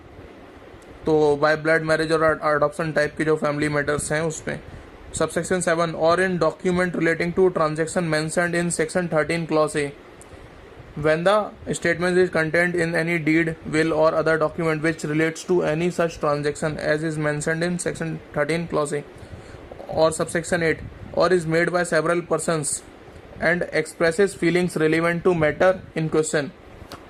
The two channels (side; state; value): both; identical; correlation 1.00